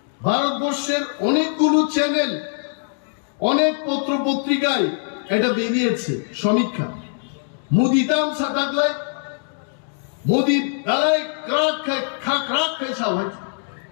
ভারতবর্ষের অনেকগুলো চ্যানেল অনেক পত্র পত্রিকায় এটা বেরিয়েছে সমীক্ষা মোদি দাম সাতাকলে মোদি গালাই ক্রাক খাক খাইছা হয়েছে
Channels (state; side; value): silent; right; digital silence